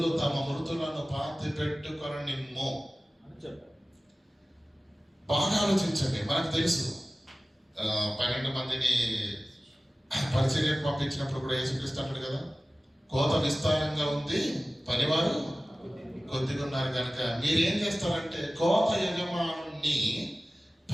తమ మృతులను పాతి పెట్టుకొనిమ్ము అని చెప్పారు. బాగా ఆలోచించండి. మనకు తెలుసు 12 మందిని పరిచర్యకు పంపించినప్పుడు కూడా యేసుక్రీస్తు అంటాడు కదా, కోత విస్తారంగా ఉంది, పనివారు కొద్దిగా ఉన్నారు కనుక మీరేం చేస్తారంటే కోత యజమానుని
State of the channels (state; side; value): normal; both; correlation 0.97